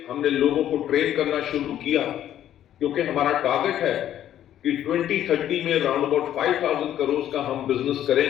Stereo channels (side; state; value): right; quieter; 11.3 dB